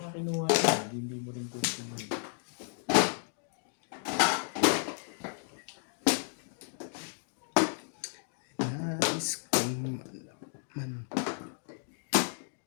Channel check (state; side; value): silent; right; digital silence